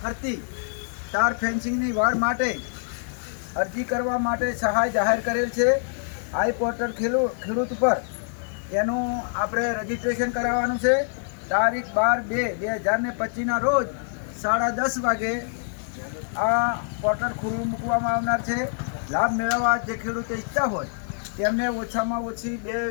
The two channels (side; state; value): right; silent; digital silence